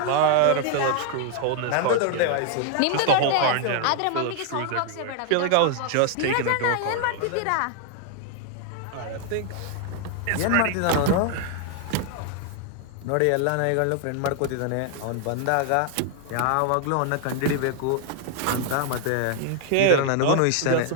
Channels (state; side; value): different; both; correlation 0.00